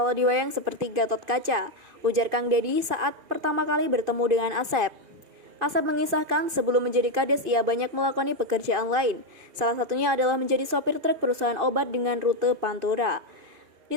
diwayang seperti Gatot Kaca, ujar Kang Deddy saat pertama kali bertemu dengan Asep. Asep mengisahkan sebelum menjadi Kades ia banyak melakoni pekerjaan lain. Salah satunya adalah menjadi sopir truk perusahaan obat dengan rute Pantura. Di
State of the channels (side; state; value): left; late; 2.5 ms